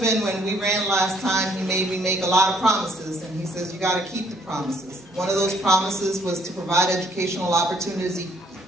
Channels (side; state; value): both; normal; correlation 0.64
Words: when we ran last time, he made me make a lot of promises, and he says, you got to keep the promises. One of those promises was to provide educational opportunities